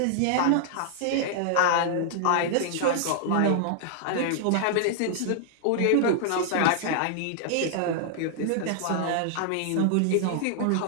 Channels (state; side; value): different; both; correlation -0.01